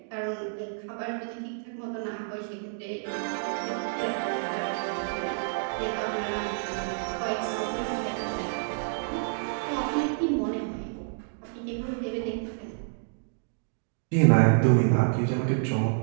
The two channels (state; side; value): silent; left; digital silence